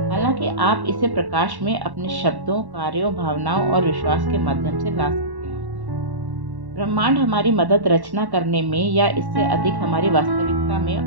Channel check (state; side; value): late; left; 1.1 ms